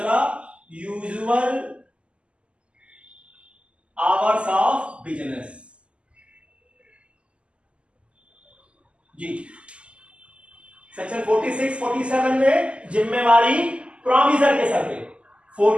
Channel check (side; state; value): left; late; 0.055 ms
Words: यूजुअल आवर्स ऑफ बिजनेस। जी, सेक्शन 46 47 में जिम्मेवारी प्रोमिसर के सर पे,